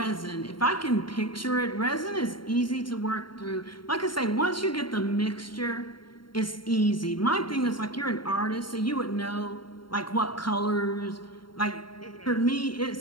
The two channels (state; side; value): late; right; 0.73 ms